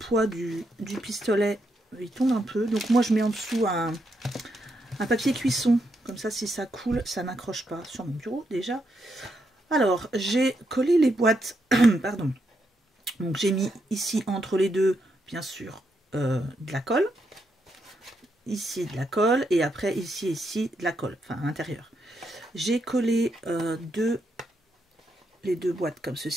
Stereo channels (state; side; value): normal; both; correlation 0.80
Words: du pistolet, il tombe un peu. Donc, moi, je mets en dessous un papier cuisson. Comme ça, si ça coule, ça n'accroche pas sur mon bureau, déjà. Alors, j'ai collé les boîtes. Pardon. Donc, j'ai mis ici, entre les deux, bien sûr, de la colle. Ici, de la colle. Et après, ici, de la colle. Enfin, à l'intérieur. J'ai collé les deux boîtes comme